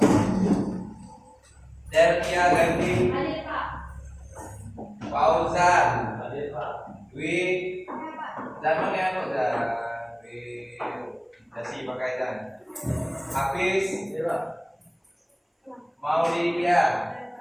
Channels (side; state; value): both; identical; correlation 1.00